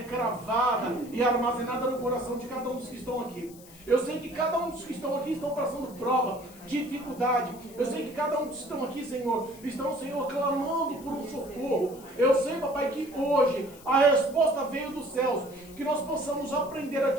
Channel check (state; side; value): noise; left; hiss, 21 dB below the sound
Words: cravada e armazenada no coração de cada um dos que estão aqui. Eu sei que cada um dos que estão aqui estão passando prova, dificuldade. Eu sei que cada um dos que estão aqui, Senhor, estão, Senhor, clamando por um socorro. Eu sei, papai, que hoje a resposta veio dos céus. Que nós possamos aprender a